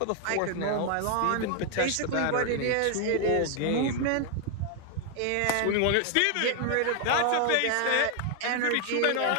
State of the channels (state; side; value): different; both; correlation 0.00